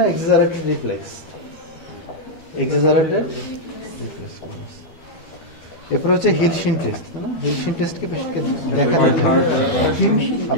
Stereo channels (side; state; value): right; late; 13 ms